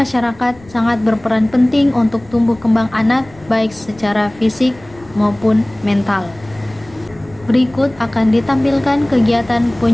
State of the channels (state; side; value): noise; left; rumble, 23 dB below the sound